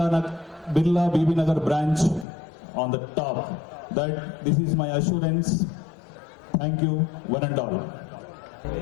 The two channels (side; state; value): right; drops out; at 2.2 s